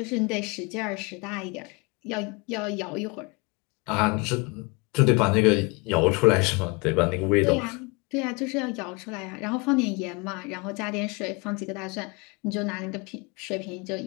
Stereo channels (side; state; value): right; quieter; 28.1 dB